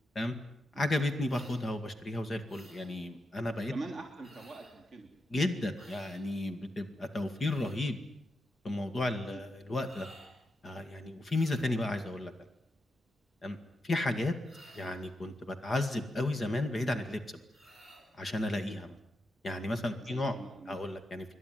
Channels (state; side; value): normal; both; correlation 0.86